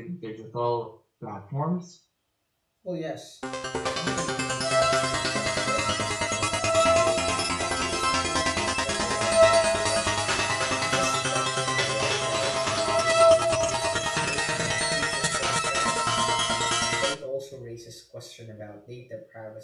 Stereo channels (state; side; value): identical; both; correlation 1.00